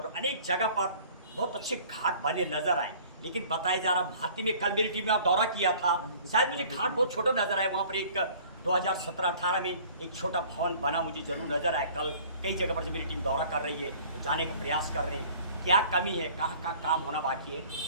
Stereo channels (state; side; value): inverted; both; correlation -0.50